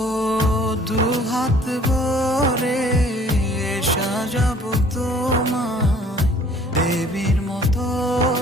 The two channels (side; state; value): both; normal; correlation 0.55